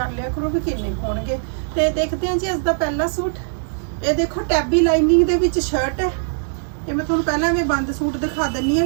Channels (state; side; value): silent; left; digital silence